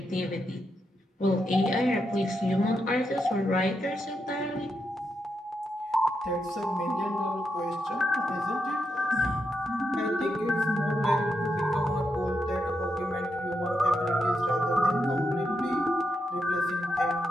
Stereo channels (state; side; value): normal; both; correlation 0.83